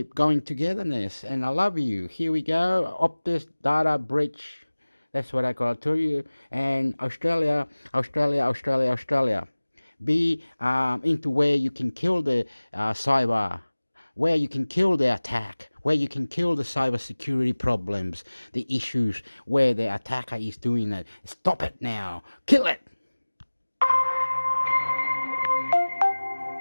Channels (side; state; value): both; inverted; correlation -1.00